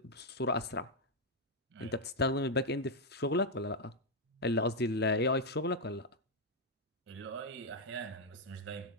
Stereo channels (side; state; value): both; normal; correlation 0.00